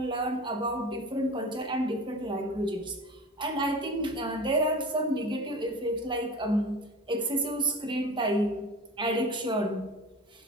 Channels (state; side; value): normal; both; correlation 0.34